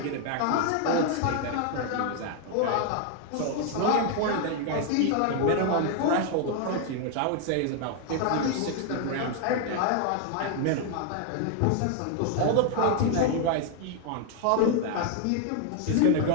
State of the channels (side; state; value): both; different; correlation 0.00